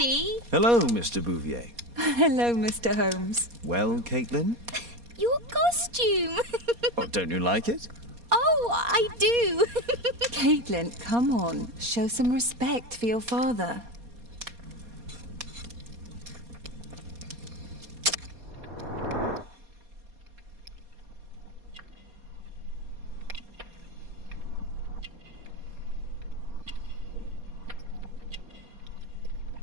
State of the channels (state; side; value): late; left; 4.2 ms